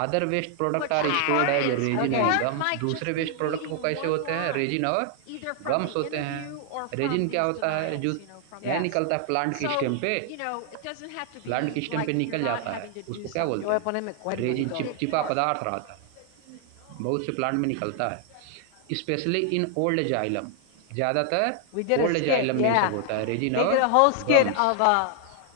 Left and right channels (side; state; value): both; different; correlation 0.00